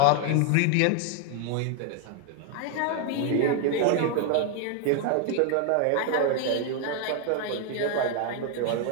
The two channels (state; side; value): different; both; correlation 0.01